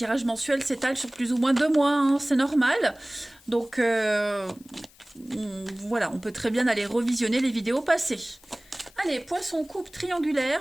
mensuels s'étalent sur plus ou moins 2 mois, hein, c'est normal. Donc, voilà, on peut très bien aller revisionner les vidéos passées. Allez, poisson coupe triangulaire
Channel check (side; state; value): left; noise; hiss, 27 dB below the sound